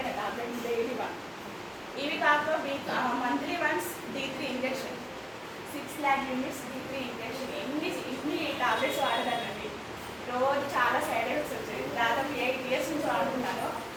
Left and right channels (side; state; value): both; identical; correlation 1.00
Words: అనే టాబ్లెట్ డైలీ వాడు. ఇవి కాక monthly once D3 injection 6 lakh units D3 injection ఇన్ని టాబ్లెట్స్ వాడదానండి. రోజు చాలా సైడ్ ఎఫెక్ట్స్ వచ్చాయి. దాదాపు 8 years నుంచి వాడుతున్నాను.